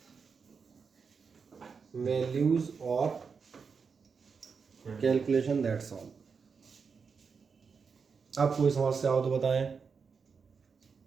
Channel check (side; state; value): left; quieter; 5.6 dB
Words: वैल्यूज और कैलकुलेशन, दैट्स ऑल। अब कोई समस्या हो तो बताएं,